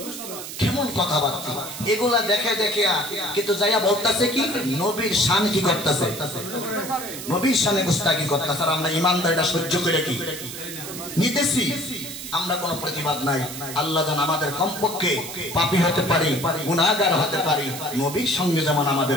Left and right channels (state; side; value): noise; right; hiss, 9 dB below the sound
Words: কেমন কথাবার্তা এগুলা দেখে দেখে, কিন্তু যাইয়া বলতেছে কি নবীর শান কি করতেছে, নবীর শানে গুস্তাখি করতেছে। আর আমরা ইমানদারিটা সহ্য করে কি নিতেছি, আমরা কোনো প্রতিবাদ নাই। আল্লাহ যেন আমাদের কমপক্ষে পাপী হতে পারি, গুনাহগার হতে পারি, নবীর সঙ্গে যেমন আমাদের